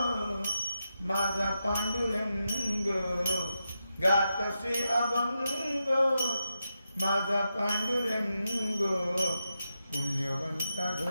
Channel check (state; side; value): inverted; both; correlation -0.88